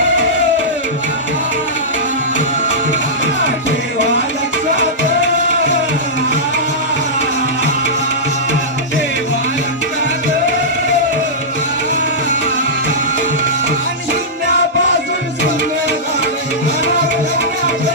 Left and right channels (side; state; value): both; normal; correlation -0.14